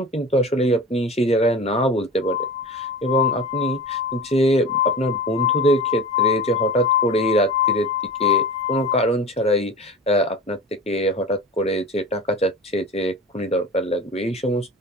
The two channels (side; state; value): both; normal; correlation 0.34